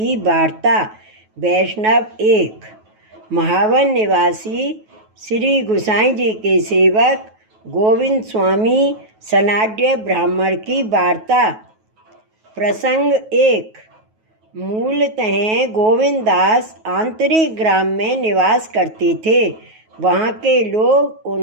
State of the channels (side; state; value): left; late; 9.3 ms